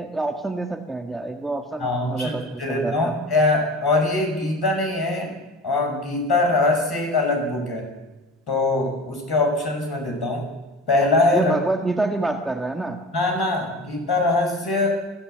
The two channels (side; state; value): both; normal; correlation 0.35